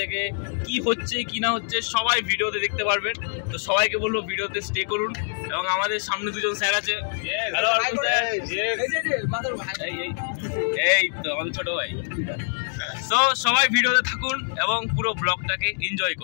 কি হচ্ছে কি না হচ্ছে সবাই ভিডিওতে দেখতে পারবেন তো সবাইকে বলবো ভিডিওতে স্টে করুন এবং আমাদের সামনে দুজন স্যার আছে হ্যালো অর্পণ স্যার এই তো আমাদের ছোট ভাই সো সবাই ভিডিওতে থাকুন এবং পুরো ব্লগটাকে এনজয়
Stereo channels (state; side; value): silent; right; digital silence